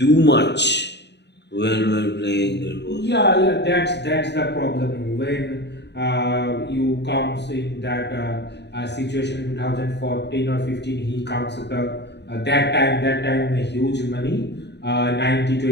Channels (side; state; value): right; late; 0.50 ms